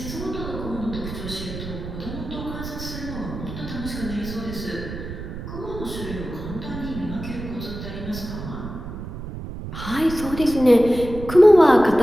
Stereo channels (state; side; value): noise; right; rumble, 9 dB below the sound